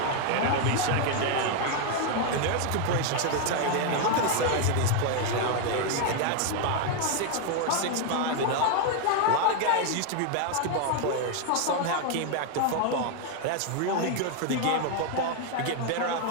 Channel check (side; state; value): both; different; correlation 0.01